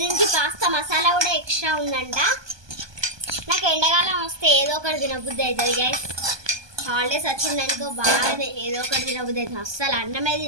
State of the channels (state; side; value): late; left; 1.2 ms